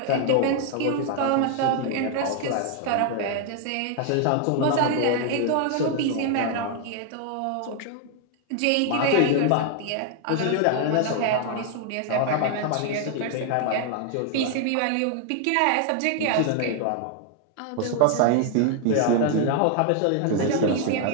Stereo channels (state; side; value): different; both; correlation 0.00